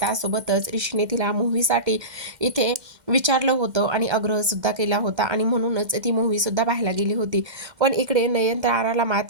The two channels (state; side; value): late; left; 2.1 ms